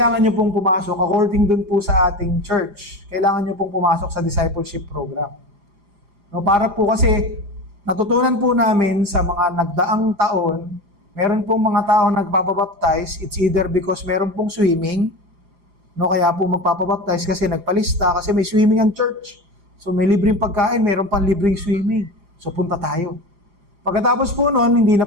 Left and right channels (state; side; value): late; left; 4.9 ms